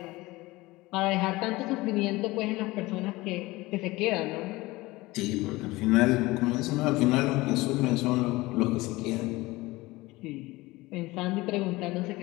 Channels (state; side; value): quieter; right; 20.4 dB